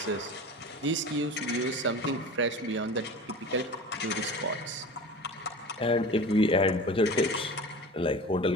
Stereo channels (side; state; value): both; normal; correlation 0.35